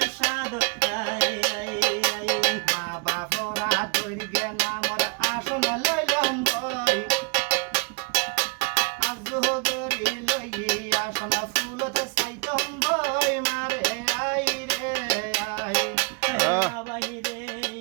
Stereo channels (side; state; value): left; quieter; 30.2 dB